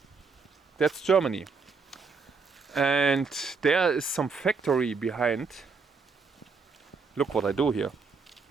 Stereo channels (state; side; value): quieter; left; 4.7 dB